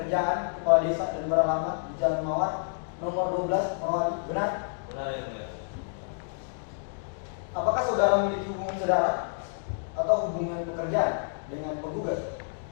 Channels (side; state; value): right; silent; digital silence